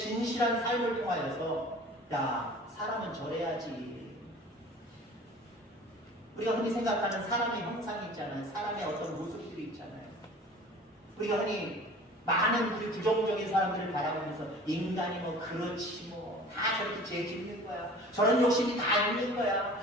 삶을 통하여서, 야, 사람은 저래야지. 우리가 흔히 생각하는 사람의 형상이 있잖아요. 사람의 어떤 모습들이 있잖아요. 우리가 흔히 많은 우리 부정적인 사람들을 바라보면서 인간이 뭐 그렇지 뭐 다 저렇게 죄 짓는 거야. 저런 욕심이 다 있는 거야.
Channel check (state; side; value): normal; both; correlation 0.44